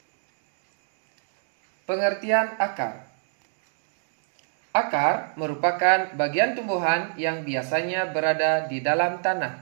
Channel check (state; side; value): silent; left; digital silence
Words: Pengertian akar. Akar merupakan bagian tumbuhan yang biasanya berada di dalam